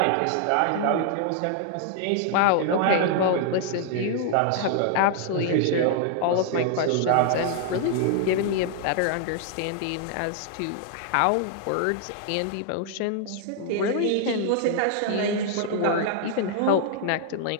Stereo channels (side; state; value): both; different; correlation 0.00